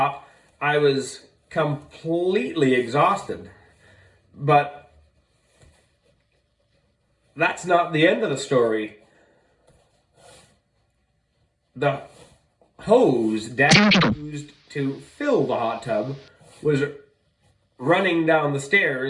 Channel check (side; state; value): both; identical; correlation 1.00